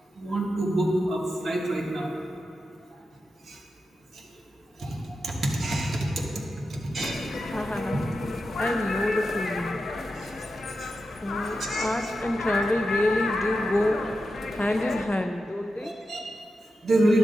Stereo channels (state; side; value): normal; both; correlation 0.90